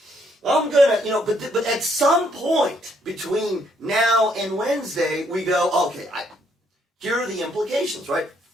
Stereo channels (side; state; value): both; normal; correlation 0.70